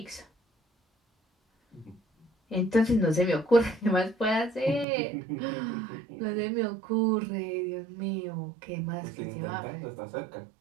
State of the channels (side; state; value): left; drops out; at 4.9 s